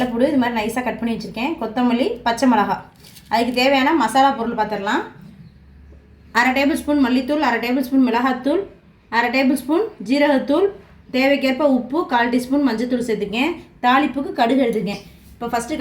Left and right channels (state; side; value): identical; both; correlation 1.00